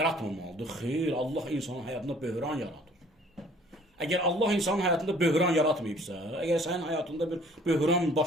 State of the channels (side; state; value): both; normal; correlation 0.55